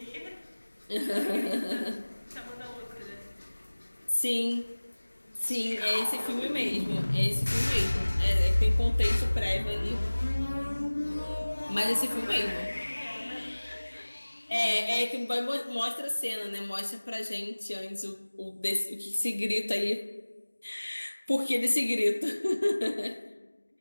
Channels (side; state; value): both; inverted; correlation -1.00